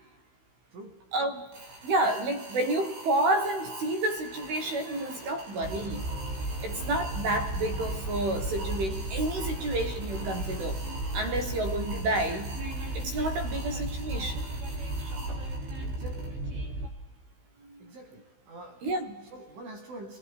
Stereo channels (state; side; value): late; left; 16 ms